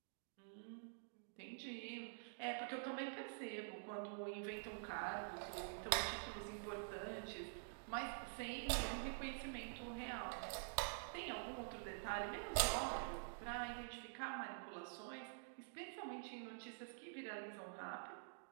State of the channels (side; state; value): left; silent; digital silence